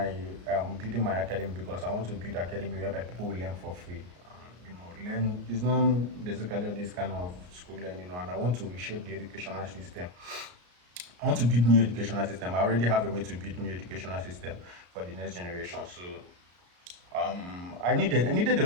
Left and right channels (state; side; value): late; left; 34 ms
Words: building my academy because I want to build academy whereby people will learn for free. You know, learn it's not basically this kind of school learning, you know, and I want to reshape the educational system. I want to build new educational system. I already have a way to build new educational system for the next generation. So I needed a